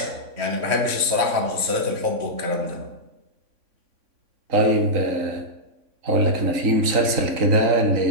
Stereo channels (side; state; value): left; late; 3.6 ms